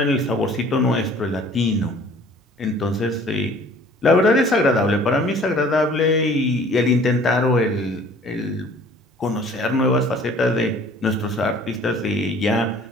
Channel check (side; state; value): both; normal; correlation 0.52